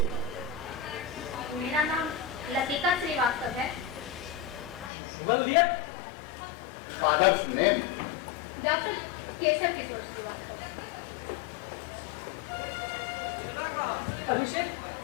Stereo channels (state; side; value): drops out; right; at 4.9 s